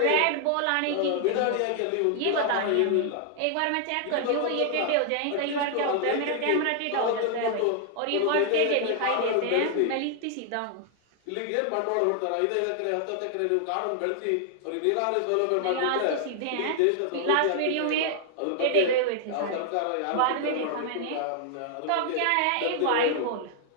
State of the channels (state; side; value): different; both; correlation 0.00